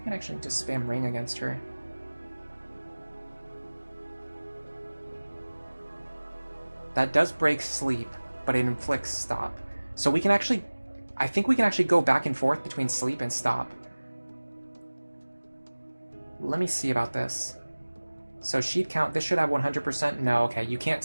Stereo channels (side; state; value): both; inverted; correlation -1.00